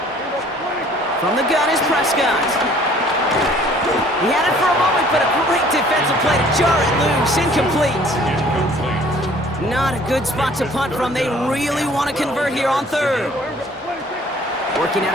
From the gun is Prescott. He had it for a moment, but a great defensive play to jar it loose. Incomplete. Not a good spot to punt from. They really want to convert here on 3rd. Working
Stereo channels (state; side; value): normal; both; correlation 0.55